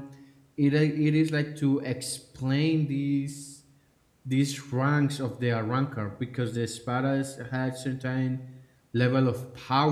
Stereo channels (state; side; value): identical; both; correlation 1.00